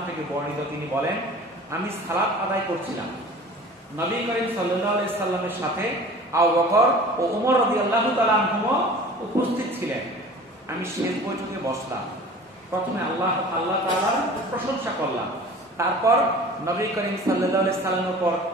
থেকে বর্ণিত, তিনি বলেন, আমি সালাত আদায় করছিলাম, নবী করিম সাল্লাল্লাহু আলাইহি সাল্লামের সাথে আবু বকর ও ওমর রাদিয়াল্লাহু তাআলা আনহু উপস্থিত ছিলেন। আমি শেষ বৈঠকে বসলাম। প্রথমে আল্লাহ তাআলার প্রশংসা করলাম, তারপর নবী করিম সাল্লাল্লাহু আলাইহি সাল্লামের উপর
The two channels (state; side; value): normal; both; correlation 0.42